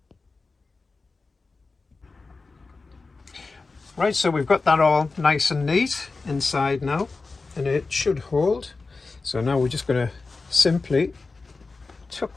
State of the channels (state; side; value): quieter; right; 3.9 dB